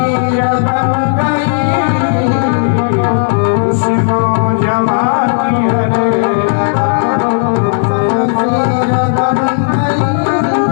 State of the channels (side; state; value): right; silent; digital silence